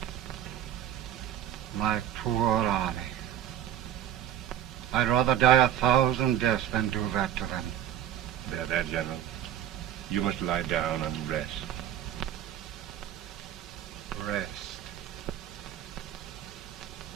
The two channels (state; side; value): quieter; left; 11.1 dB